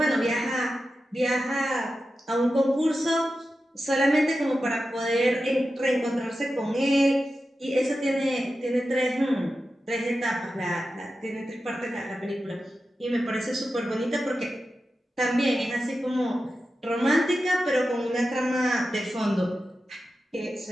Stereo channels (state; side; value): normal; both; correlation 0.91